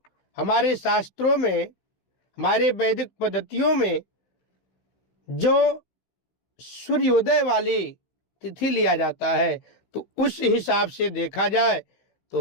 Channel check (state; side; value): late; right; 16 ms